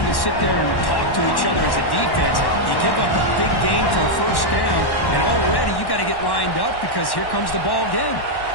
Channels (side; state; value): right; late; 1.1 ms